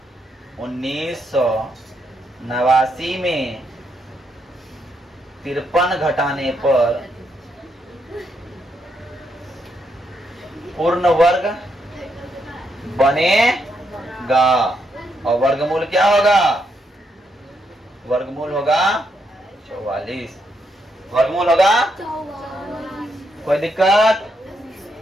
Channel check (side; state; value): both; normal; correlation 0.78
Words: 1989 में 53 घटाने पर पूर्ण वर्ग बनेगा और वर्गमूल क्या होगा? वर्गमूल होगा 44। वर्गमूल होगा 44। कोई दिक्कत?